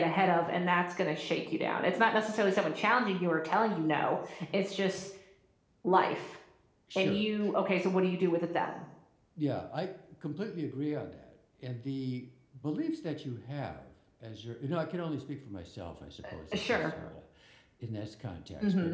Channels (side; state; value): both; identical; correlation 1.00